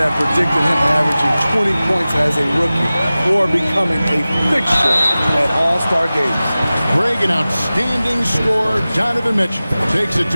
predicted him averaging 20 points as a rookie or becoming a fixture at All-Star games. Greg, an outstanding scorer. Donovan Mitchell takes it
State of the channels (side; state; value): both; inverted; correlation -0.97